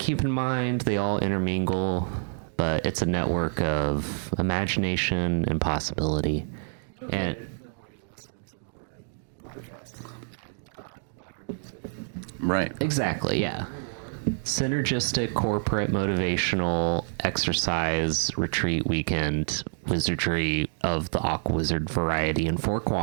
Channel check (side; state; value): left; silent; digital silence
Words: in mind. They all intermingle, but it's a network of imagination and possibility. You'll get And- it the more you listen to more podcasts and buy our music and Right. Exactly, yeah. the lore. Synergistic, corporate, motivational, exercise, retreat weekend, wizardry of the Aquawizard variety in 4